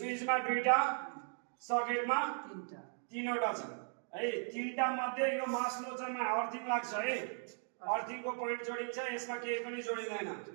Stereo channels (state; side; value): silent; left; 53 dB below the other